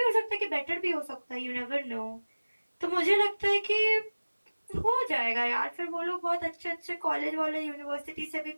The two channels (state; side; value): inverted; both; correlation -1.00